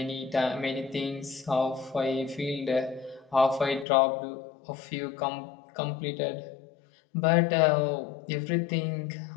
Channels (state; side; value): drops out; right; at 3.9 s